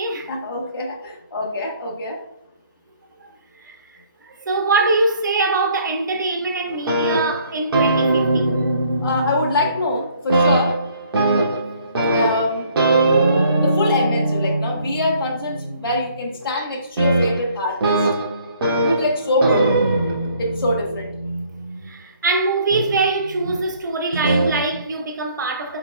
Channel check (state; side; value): inverted; both; correlation -0.61